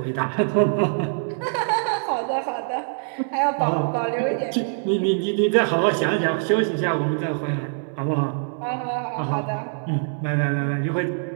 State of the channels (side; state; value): left; silent; 63 dB below the other